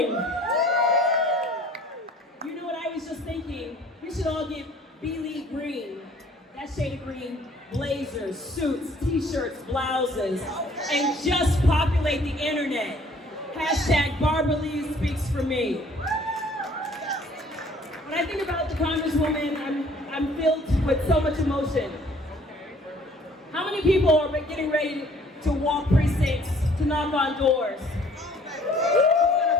You know what I was just thinking? We should all get Bealey green. That shade of green, blazers, suits, t-shirts, blouses, and just populate the internet. Hashtag Barbara Lee speaks for me. When I think about the Congresswoman, I'm filled with so much emotion. How many people are getting ready to walk precincts, to knock on doors? Who's gonna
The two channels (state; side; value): normal; both; correlation 0.56